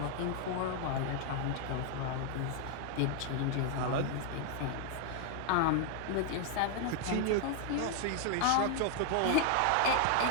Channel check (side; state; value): both; different; correlation 0.00